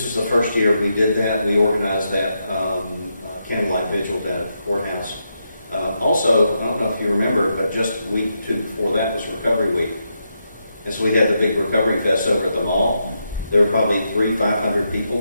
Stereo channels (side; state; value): both; inverted; correlation -0.83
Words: was the first year we did that. We organized that candlelight vigil down at the courthouse. Also, I don't know if you remember, but just a week or two before that was Recovery Week. And so we had the big Recovery Fest over at the mall. There were probably 300-500 people